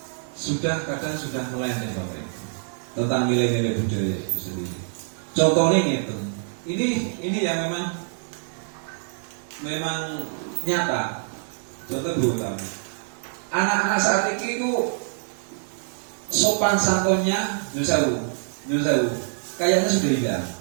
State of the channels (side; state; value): left; silent; 57 dB below the other